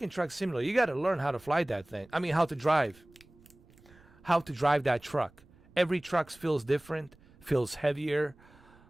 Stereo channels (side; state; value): right; noise; rumble, 27 dB below the sound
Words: Truck Simulator, you got to learn how to fly that thing. I mean, how to drive. How to drive that truck. Every truck feels different, feels heavier.